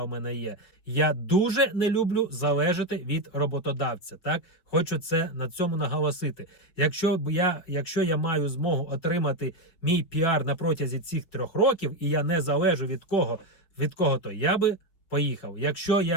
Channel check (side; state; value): right; late; 5.7 ms